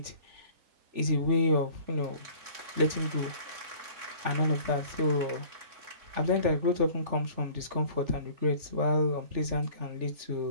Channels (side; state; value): left; late; 3.4 ms